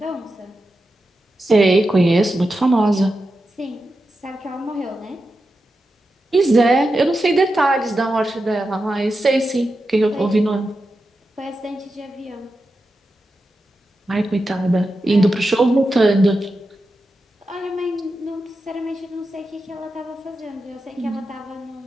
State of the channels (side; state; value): both; normal; correlation 0.90